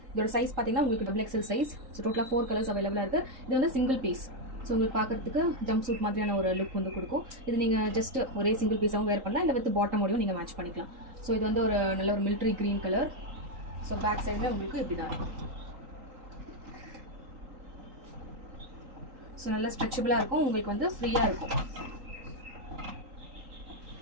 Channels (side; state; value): left; late; 3.8 ms